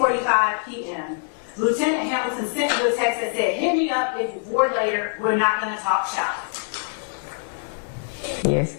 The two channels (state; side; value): silent; right; 57 dB below the other